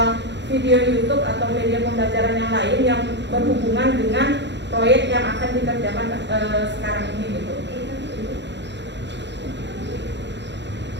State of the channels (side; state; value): left; late; 0.52 ms